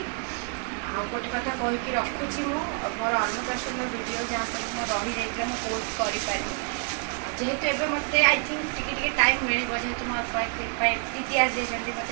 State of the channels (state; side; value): quieter; left; 38.8 dB